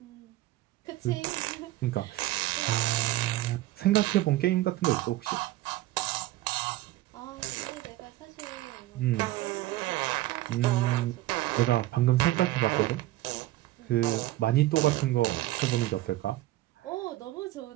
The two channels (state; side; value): quieter; left; 16.3 dB